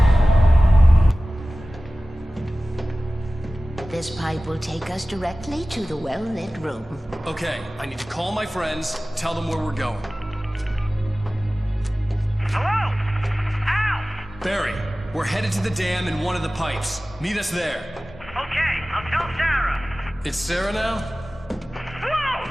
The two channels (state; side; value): normal; both; correlation 0.97